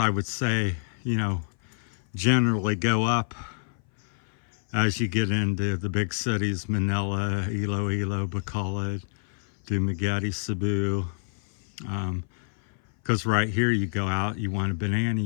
would say, you know, generally go up as you get into the big cities, Manila, Iloilo, Bacolod, Dumaguete, Cebu. Because right here you go out, you want a banana,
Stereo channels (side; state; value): right; silent; 57 dB below the other